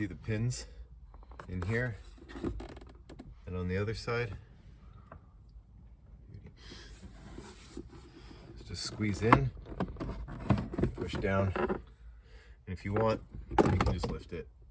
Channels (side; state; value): both; identical; correlation 1.00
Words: the pins in here and on the other side. Just squeeze in, push down, and if you want, you can just lift it